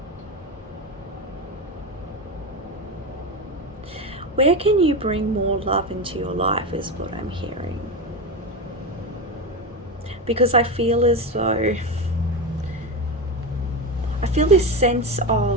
Where can you bring more love into your life is what I'm hearing. Because I feel as though, I feel this sense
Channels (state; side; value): normal; both; correlation 0.17